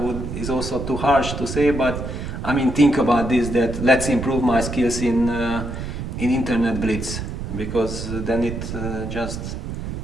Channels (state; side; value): noise; right; rumble, 6 dB below the sound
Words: is also too harsh to say, but I mean, think about this, that let's improve my skills in internet blitz, because then